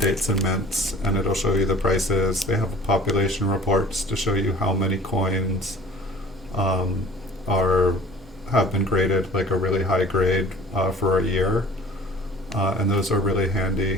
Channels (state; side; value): normal; both; correlation 0.48